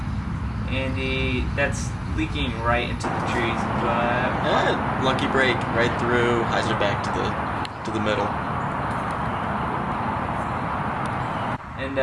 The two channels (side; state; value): both; identical; correlation 1.00